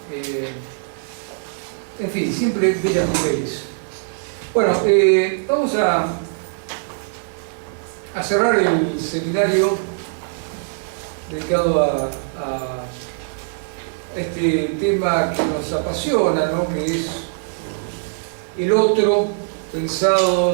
En fin, siempre bellas mujeres. Bueno, vamos a cerrar el seminario dedicado a este tema que nos apasiona, ¿no? Que es el otro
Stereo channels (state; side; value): silent; left; digital silence